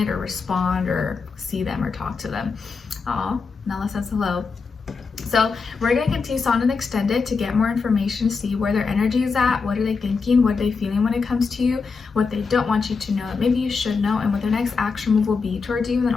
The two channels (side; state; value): right; quieter; 4.9 dB